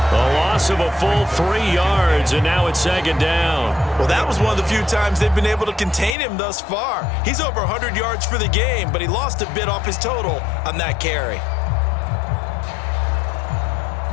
A loss of a full 3 yards, and now it's 2nd down. Well, that was one of the few times they've been able to contain him thus far. He's over 100 yards for the game, but he lost a bit off his total on that carry.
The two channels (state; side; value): drops out; right; at 6.2 s